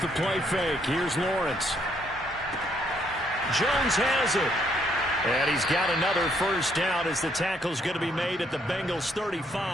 the play fake. Here's Lawrence. Jones has it. And he's got another first down as the tackle's going to be made at the Bengals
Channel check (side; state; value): both; normal; correlation 0.70